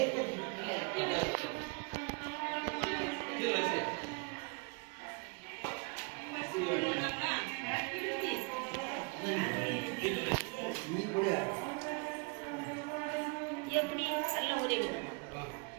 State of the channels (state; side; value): quieter; left; 31.5 dB